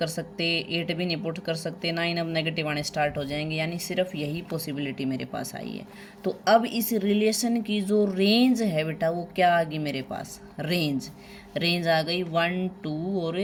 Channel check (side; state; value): both; identical; correlation 1.00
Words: सकते, 8 भी नहीं पुट कर सकते, 9 अब नेगेटिव आने स्टार्ट हो जाएंगे, यानी सिर्फ यही पॉसिबिलिटी मेरे पास आई है। तो अब इस रिलेशन की जो रेंज है बेटा वो क्या आ गई मेरे पास, रेंज आ गई 1 2 और